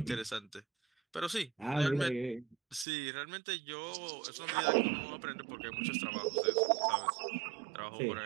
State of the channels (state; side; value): drops out; left; at 2.9 s